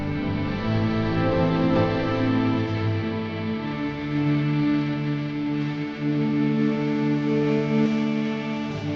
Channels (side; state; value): both; identical; correlation 1.00